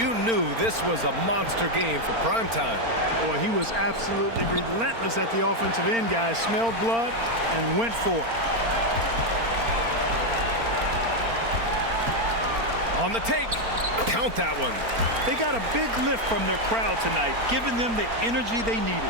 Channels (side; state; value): left; late; 4.4 ms